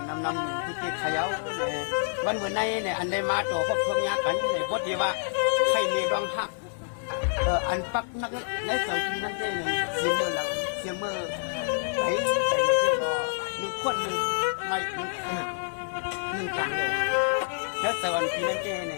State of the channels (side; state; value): right; silent; 60 dB below the other